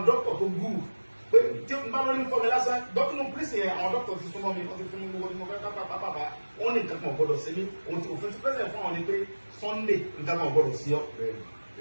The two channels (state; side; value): inverted; both; correlation -1.00